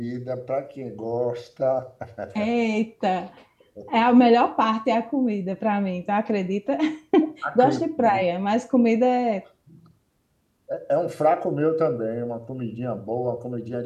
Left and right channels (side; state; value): both; identical; correlation 1.00